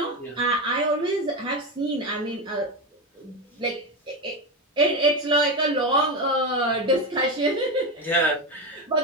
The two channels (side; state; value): both; normal; correlation 0.16